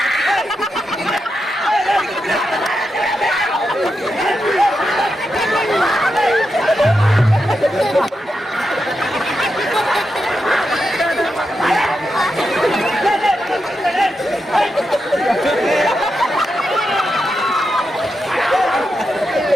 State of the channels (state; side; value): normal; both; correlation 0.87